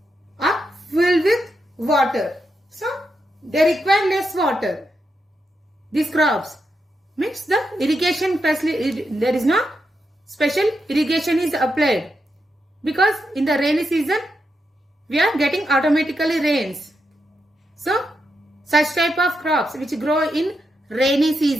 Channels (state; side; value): normal; both; correlation 0.84